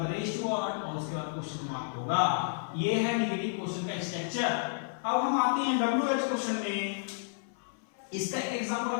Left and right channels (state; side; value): silent; right; 57 dB below the other